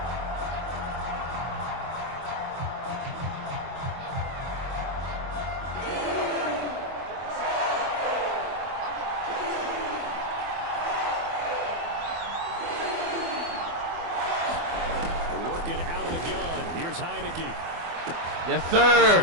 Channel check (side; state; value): left; late; 24 ms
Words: Heineke. Yes, sir.